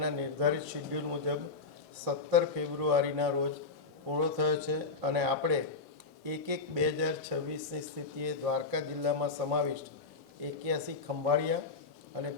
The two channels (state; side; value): quieter; right; 4.1 dB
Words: નિર્ધારિત શેડ્યુલ મુજબ 17 ફેબ્રુઆરીના રોજ પૂરો થયો છે અને આપણે 1/1/2026ની સ્થિતિએ દ્વારકા જિલ્લામાં સમાવિષ્ટ 81 ખંભાળિયા અને